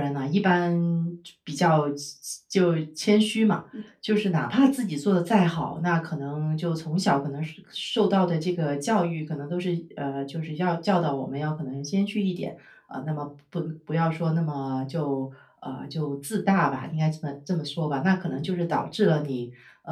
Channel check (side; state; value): both; identical; correlation 1.00